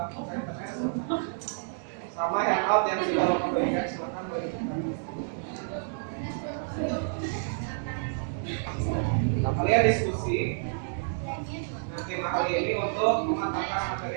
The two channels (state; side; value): silent; left; digital silence